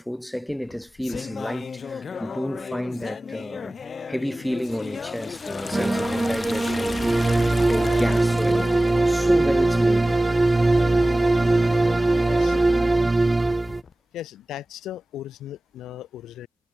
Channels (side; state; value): both; normal; correlation 0.97